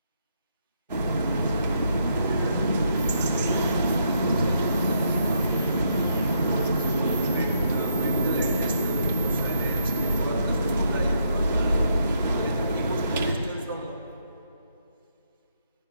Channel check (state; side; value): inverted; both; correlation -0.76